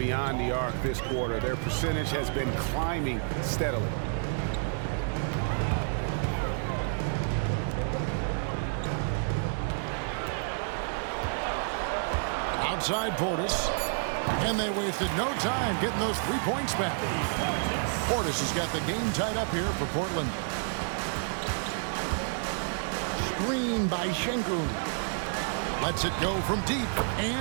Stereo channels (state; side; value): silent; left; digital silence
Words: the arc this quarter. Their percentage has been climbing steadily. Outside Portis. And they wasted no time getting those 3 points back. Portis has got the game tied up here for Portland. Screen by Şengün. Lets it go from deep.